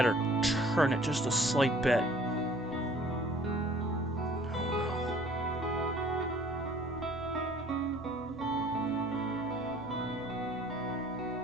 or turn it just a slight bit.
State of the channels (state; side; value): noise; left; hum, 20 dB below the sound